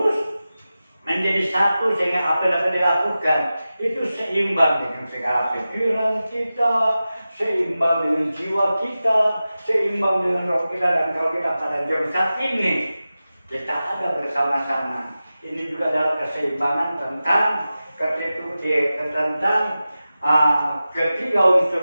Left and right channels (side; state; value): both; inverted; correlation -0.94